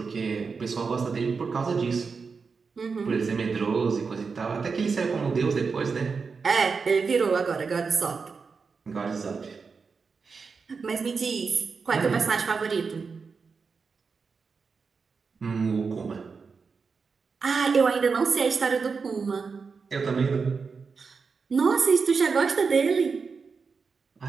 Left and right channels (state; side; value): quieter; left; 5.1 dB